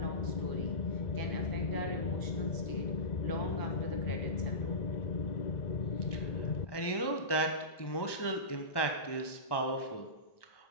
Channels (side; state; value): right; late; 1.2 ms